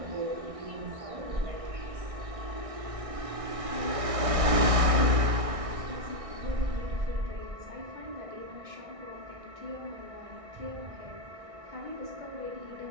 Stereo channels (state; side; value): late; left; 1.6 ms